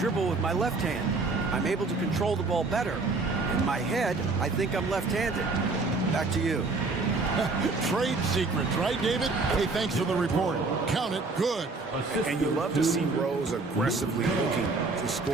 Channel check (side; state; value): left; quieter; 3.7 dB